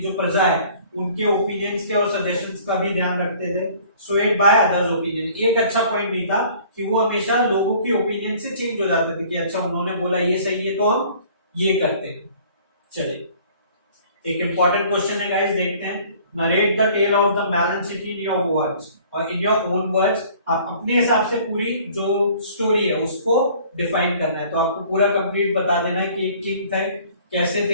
जो प्रजा है, उनके ओपिनियंस के और सजेशंस का भी ध्यान रखते थे। स्वेड बाय अदर्स ओपिनियन, एक अच्छा पॉइंट नहीं था कि वो हमेशा लोगों की ओपिनियन से चेंज हो जाते थे कि अच्छा उन्होंने बोला ये सही है तो हम ये करते हैं। चलिए एक इंपॉर्टेंट क्वेश्चन है गाइस, देखते हैं। Narrate the tale of the melon city in your words, और इन योर ओन वर्ड्स आप अपने हिसाब से पूरी जो स्टोरी है उसको डिफाइन करना है। तो आपको पूरा कंप्लीट बता देना है कि एक किंग थे, कैसे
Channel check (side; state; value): both; inverted; correlation -0.53